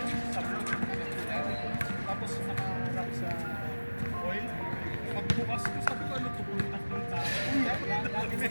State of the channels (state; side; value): inverted; both; correlation -1.00